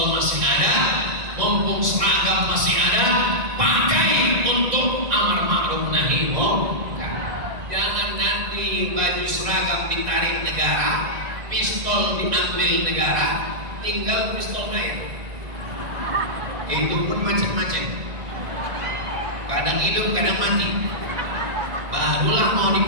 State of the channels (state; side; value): late; left; 2.0 ms